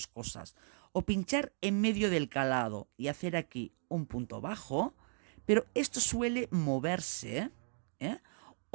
cosas. O pinchar en medio del calado y hacer aquí un punto bajo, pero esto suele moverse, ¿eh?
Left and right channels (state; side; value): silent; left; 54 dB below the other